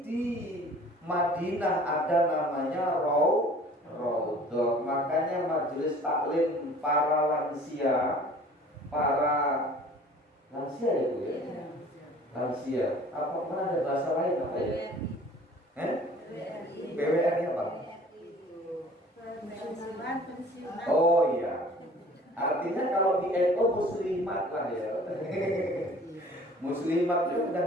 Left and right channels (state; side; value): normal; both; correlation 0.49